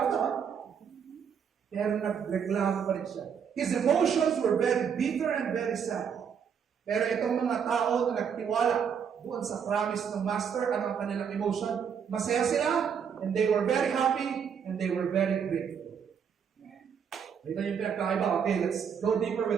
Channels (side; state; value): left; quieter; 7.3 dB